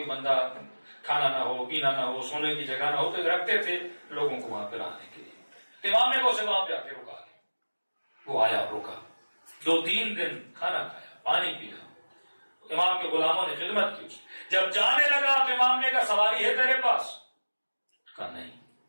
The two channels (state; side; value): inverted; both; correlation -1.00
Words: بندہ کھانا نہ ہو، پینا نہ ہو، سونے کی جگہ نہ ہو تو رکھتے تھے لوگوں کو وہاں پہ رہنے کے لیے. امام نے اسے وہاں پہ آ کے روکا. وہ آیا، روکا، 2-3 دن کھانا کھایا، پانی پیا. امام کے غلاموں نے خدمت کی. جب جانے لگا تو امام نے کہا سواری ہے تیرے پاس؟ کہا نہیں.